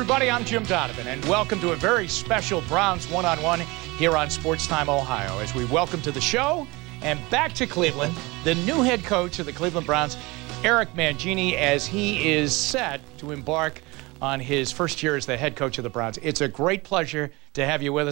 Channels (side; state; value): left; quieter; 23.8 dB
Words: I'm Jim Donovan, and welcome to a very special Browns one-on-one here on Sports Time Ohio, as we welcome to the show and back to Cleveland the new head coach of the Cleveland Browns, Eric Mangini, as he is set to embark on his first year as the head coach of the Browns. It's a great pleasure to have you with